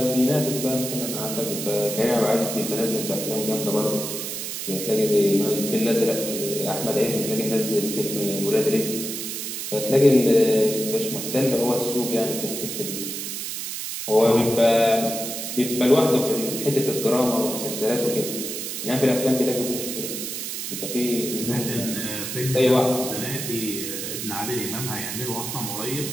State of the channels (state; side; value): noise; right; hiss, 5 dB below the sound